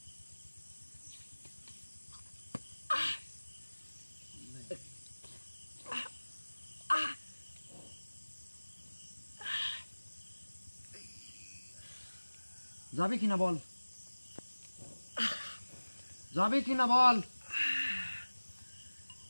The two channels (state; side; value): inverted; both; correlation -1.00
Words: যাবি কিনা বল, যাবি কিনা বল।